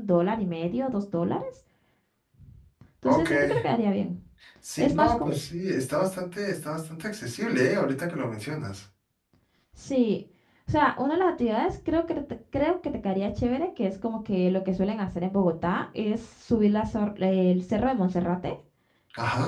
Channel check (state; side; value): identical; both; correlation 1.00